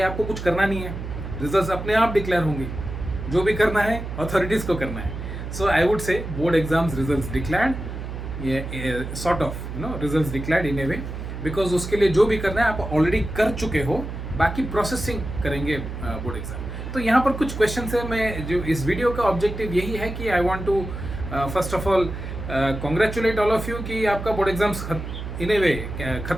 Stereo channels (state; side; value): noise; right; hum, 7 dB below the sound